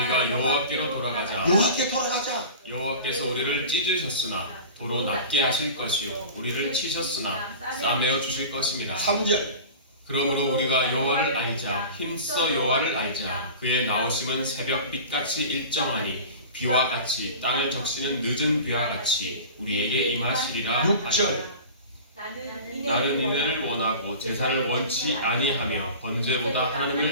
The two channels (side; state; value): both; inverted; correlation -0.36